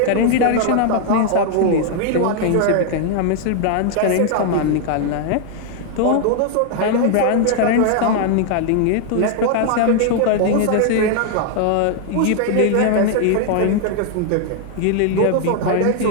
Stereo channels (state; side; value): different; both; correlation 0.00